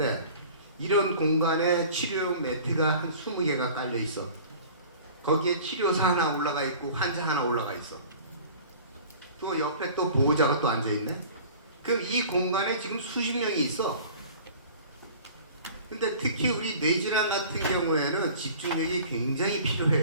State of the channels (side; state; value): both; inverted; correlation -0.44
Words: 이런 공간에 치료용 매트가 한 20개가 깔려 있어. 거기에 치료사 하나 올라가 있고 환자 하나 올라가 있어. 또 옆에 또 보호자가 또 앉아 있네. 그럼 이 공간에 지금 수십 명이 있어. 근데 특히 우리 뇌질환 같은 경우에는 집중력이 굉장히